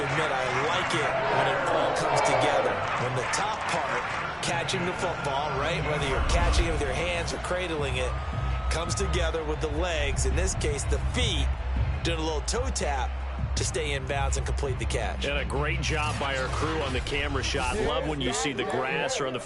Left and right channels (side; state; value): both; identical; correlation 1.00